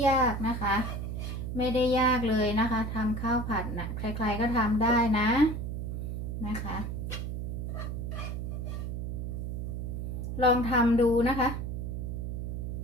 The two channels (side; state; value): right; noise; hum, 4 dB below the sound